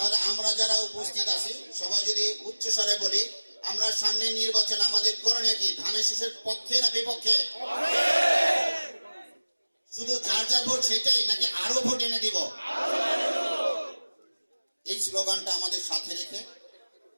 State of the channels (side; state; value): both; inverted; correlation -1.00